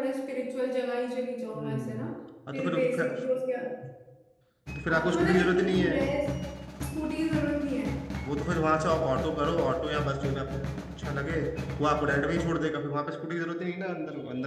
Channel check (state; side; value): identical; both; correlation 1.00